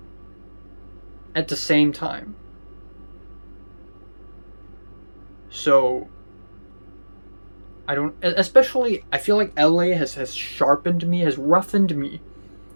at the same time. So I feel like LA has sharpened me, has roughened me.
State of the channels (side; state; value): both; inverted; correlation -1.00